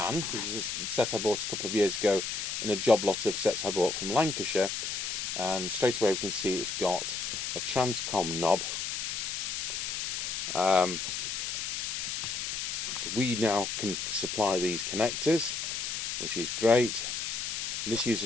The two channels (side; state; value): left; noise; hiss, 3 dB below the sound